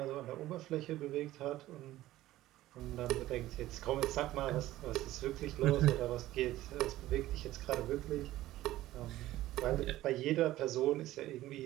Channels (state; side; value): quieter; left; 15.4 dB